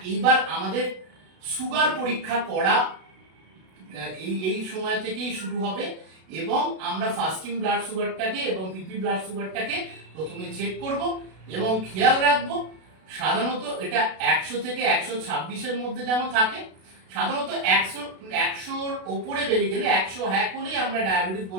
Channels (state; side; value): late; left; 32 ms